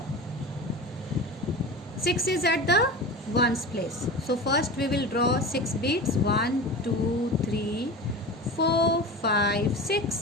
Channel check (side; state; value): both; normal; correlation 0.30